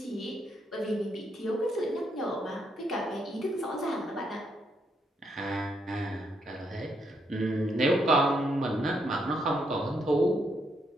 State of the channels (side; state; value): both; normal; correlation 0.77